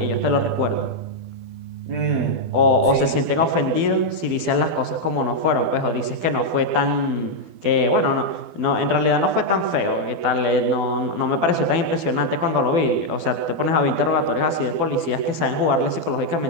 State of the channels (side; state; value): left; late; 12 ms